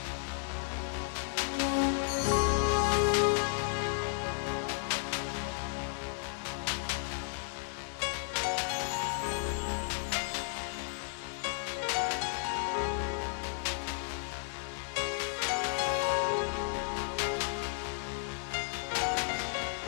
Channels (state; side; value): silent; right; digital silence